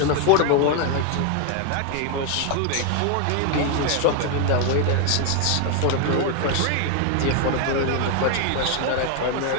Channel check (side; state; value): both; different; correlation 0.01